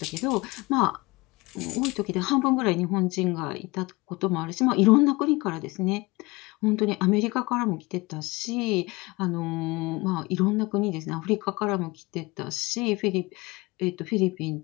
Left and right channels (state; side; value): quieter; right; 23.7 dB